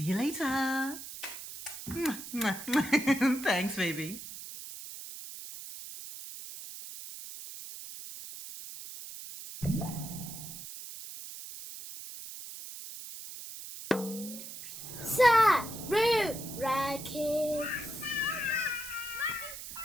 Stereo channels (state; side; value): noise; right; hiss, 11 dB below the sound